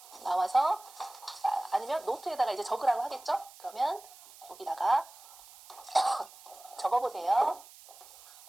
나와서 아니면 노트에다가 이제 적으라고 하겠죠? 그러면 여기다가 적어보세요.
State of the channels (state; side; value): noise; right; hiss, 20 dB below the sound